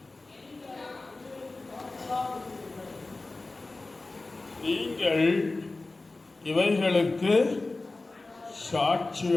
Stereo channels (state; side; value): quieter; right; 3.3 dB